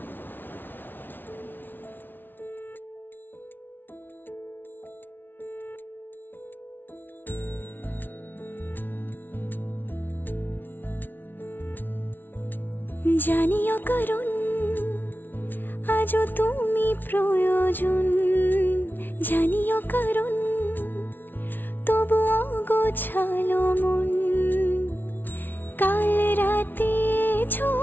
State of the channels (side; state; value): right; late; 0.094 ms